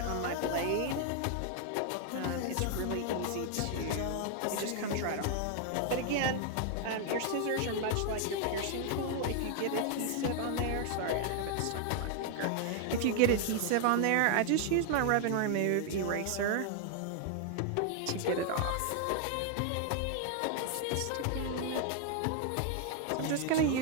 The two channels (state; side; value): different; both; correlation 0.00